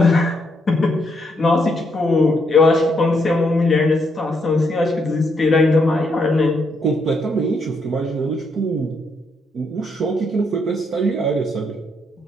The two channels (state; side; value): normal; both; correlation 0.76